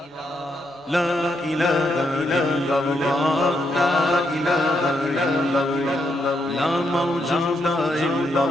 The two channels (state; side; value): normal; both; correlation 0.79